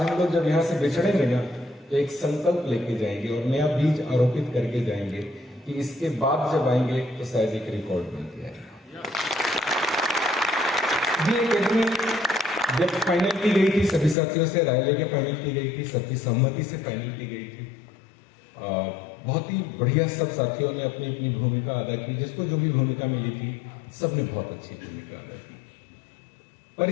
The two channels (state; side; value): drops out; right; at 14.2 s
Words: लोग जब यहाँ से बिछड़ेंगे ना तो एक संकल्प लेके जाएंगे और नया बीज आरोपित करके जाएंगे कि इसके बाद जब आएंगे तो शायद एक रिकॉर्ड बन के आएगा। ये एकेडमी जब फाइनल की गई थी, सभी साथियों से राय लेके फाइनल की गई थी, सबकी सहमति से फाइनल की गई थी। बहुत ही बढ़िया सब साथियों ने अपनी अपनी भूमिका अदा की। जिसको जो भी भूमिका मिली थी सबने बहुत अच्छी भूमिका अदा की।